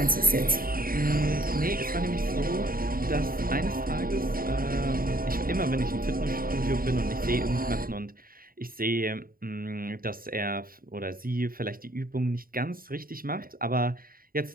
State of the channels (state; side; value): late; left; 0.42 ms